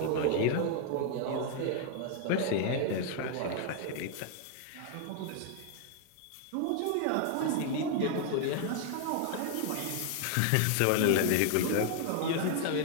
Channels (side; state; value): both; different; correlation 0.00